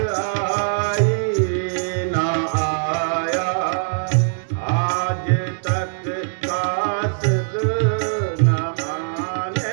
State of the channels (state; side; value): silent; left; digital silence